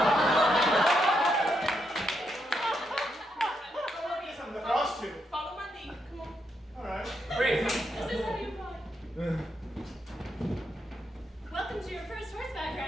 I'm the first two. Follow my lead. Come on. All right. Great. This is how you ride. Welcome to your first horseback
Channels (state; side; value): normal; both; correlation 0.80